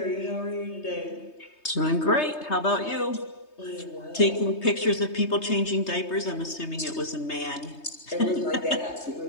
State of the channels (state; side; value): late; right; 3.2 ms